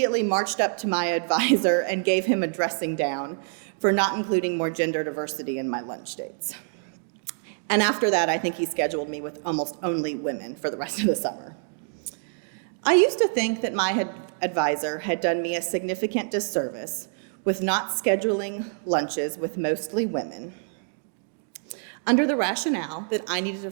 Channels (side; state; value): left; silent; digital silence